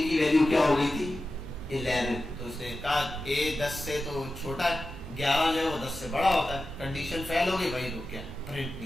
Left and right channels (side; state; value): both; normal; correlation 0.93